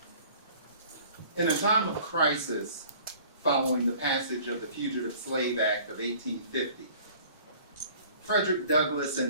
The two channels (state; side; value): inverted; both; correlation -0.50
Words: In a time of crisis following the passage of the Fugitive Slave Act of 1850, Frederick Douglass